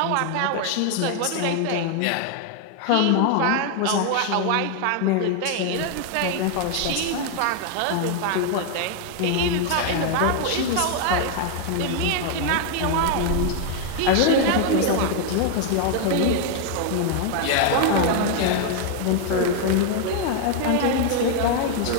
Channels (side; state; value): both; different; correlation 0.00